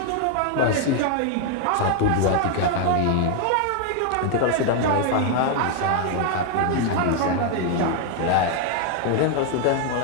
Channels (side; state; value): both; different; correlation 0.00